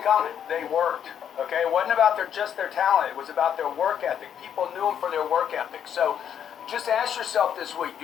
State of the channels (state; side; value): quieter; right; 8.8 dB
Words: common. They worked. Okay? It wasn't about just their talent. It was about their work ethic. People knew them for their work ethic. So just ask yourself this week,